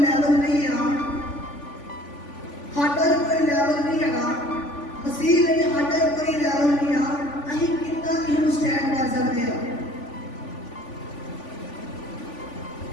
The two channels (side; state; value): right; late; 3.5 ms